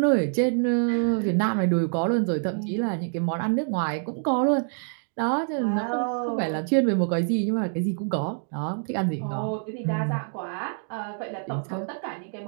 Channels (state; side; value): silent; left; 60 dB below the other